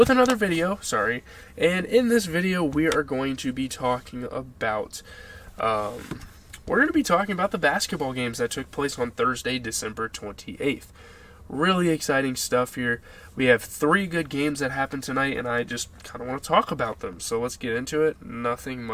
another video, and in this video we are going to be talking about, the basketball games that took place on Thursday, December 28th. Really exciting stuff here. We have 3 good games that happened tonight, and I just kind of want to talk about them. So let's get into it. Nothing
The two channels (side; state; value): both; identical; correlation 1.00